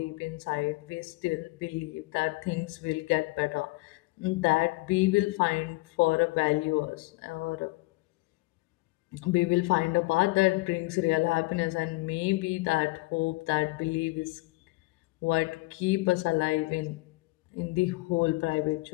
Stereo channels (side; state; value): right; quieter; 23.2 dB